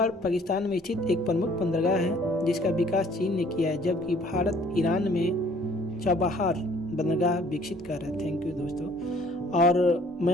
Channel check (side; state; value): both; normal; correlation 0.57